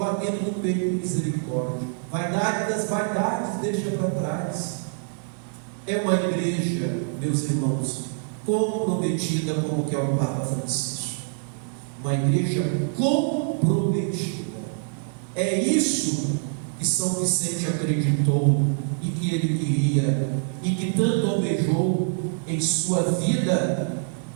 no peito de misericórdia. Vaidade das vaidades deixa para trás. É uma igreja, meus irmãos, comprometida, como que é o Papa Francisco. Uma igreja comprometida. É isso que São Vicente acreditou e que ele queria e que tanto almejou em sua vida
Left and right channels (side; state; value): left; silent; digital silence